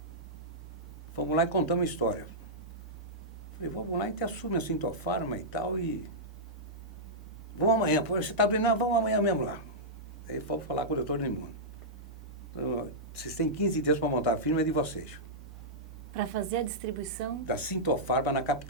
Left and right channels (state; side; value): normal; both; correlation -0.11